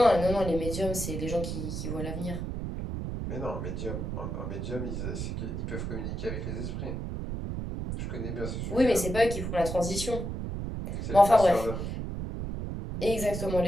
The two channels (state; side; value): noise; right; rumble, 4 dB below the sound